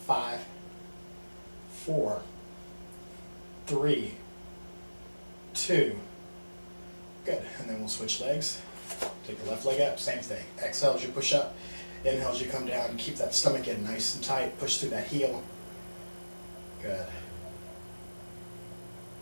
5, 4, 3, 2. Good. And then we'll switch legs. Take the left leg up, same thing. Exhale as you push up. Inhale as you come down. Keep that stomach in nice and tight. Push through that heel. Good.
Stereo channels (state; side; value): inverted; both; correlation -1.00